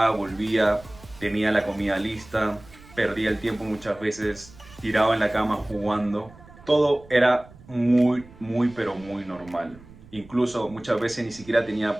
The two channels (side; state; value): right; noise; rumble, 22 dB below the sound